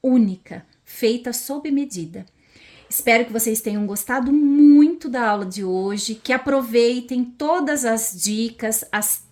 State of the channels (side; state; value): both; identical; correlation 1.00